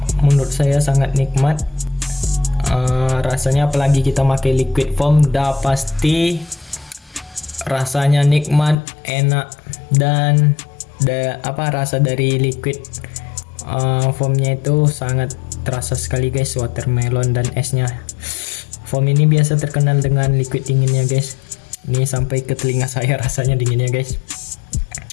menurut saya sangat nikmat. Rasanya apalagi kita pakai liquid foam, dah pasti rasanya nikmat, enak, dan rasa dari liquid foamnya itu sangat terasa sekali guys, watermelon dan esnya. Foam ini biasa terkenal dengan liquid dinginnya guys. Ini sampai ke telinga saya rasanya dinginnya guys.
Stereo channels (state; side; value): drops out; right; at 8.8 s